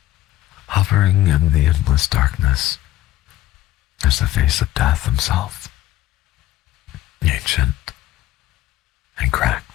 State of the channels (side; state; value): right; quieter; 14.8 dB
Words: Hovering in the endless darkness is the face of death himself, ancient and